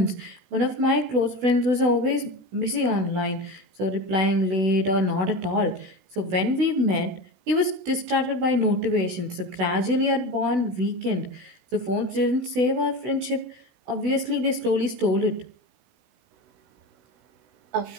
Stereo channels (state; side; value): late; left; 16 ms